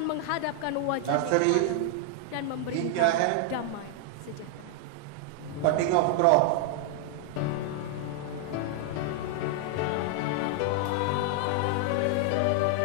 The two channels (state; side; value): different; both; correlation 0.00